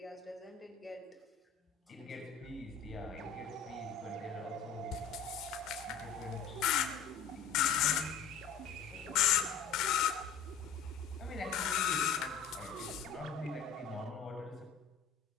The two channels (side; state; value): right; quieter; 6.7 dB